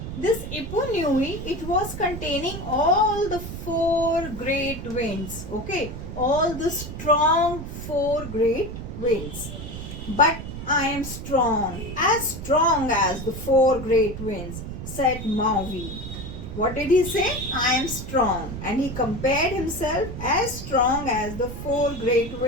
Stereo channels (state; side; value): noise; right; rumble, 8 dB below the sound